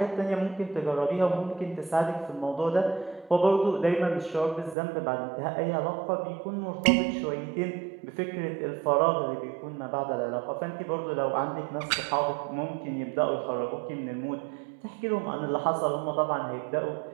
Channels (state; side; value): drops out; left; at 4.8 s